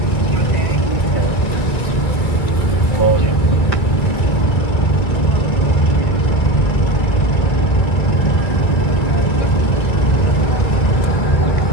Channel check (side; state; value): right; late; 1.6 ms